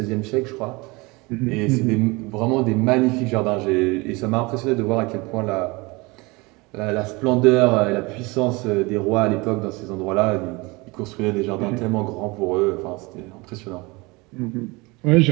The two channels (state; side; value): quieter; left; 24.9 dB